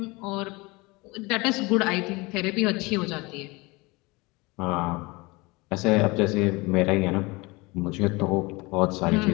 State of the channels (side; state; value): right; quieter; 24.5 dB